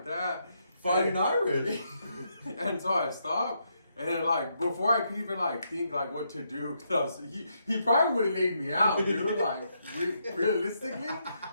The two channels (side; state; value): both; inverted; correlation -0.79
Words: that, Fighting and, Irish. and so I stopped. And then, like, before I could even, like, think, like, what to do, because he probably would have laid me out, dude. Like, realistically,